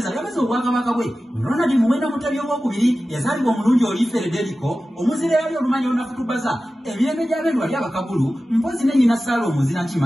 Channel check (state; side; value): normal; both; correlation 0.95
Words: yameza obwakabaka bwe Ronald Muwenda Mutebi owookubiri yazaalibwa omulungi oli Federico omuzira yali olumanyi olunakutubaza emirembe gy'abendo wali abakabulu mpozi ne nnyina Saala omuzira